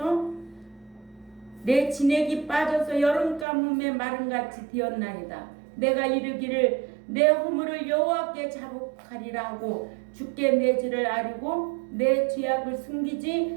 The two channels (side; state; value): left; drops out; at 3.5 s